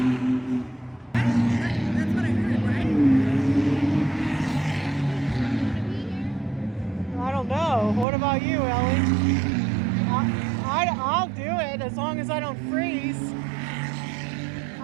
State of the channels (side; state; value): left; drops out; at 8.1 s